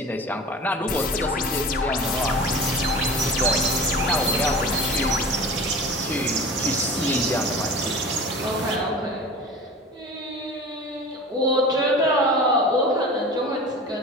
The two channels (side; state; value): both; normal; correlation 0.37